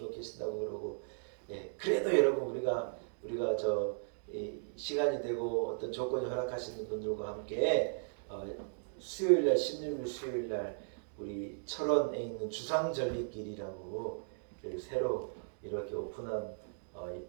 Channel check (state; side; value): silent; left; digital silence